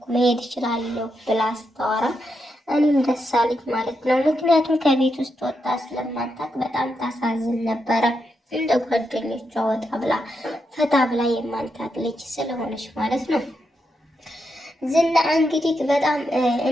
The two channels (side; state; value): both; normal; correlation 0.83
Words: መሄድ እችላለሁ ብላ ስታወራ እኔም ደስ አለኝ ማለት ነው። ምክንያቱም ከቤት ውስጥ ወጣ ስለማታውቅ በጣም ታሳዝን ነበረ። እንደ ጓደኞቿ ወጣ ብላ ፈታ ብላ የማንታቅ ልጅ ስለሆነች ማለት ነው። ዝና እንግዲህ በጣም